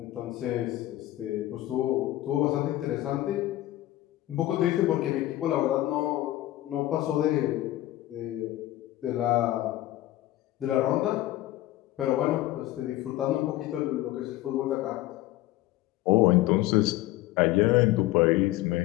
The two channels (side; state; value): right; quieter; 15.7 dB